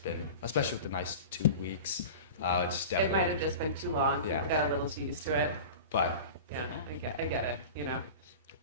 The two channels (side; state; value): both; inverted; correlation -0.33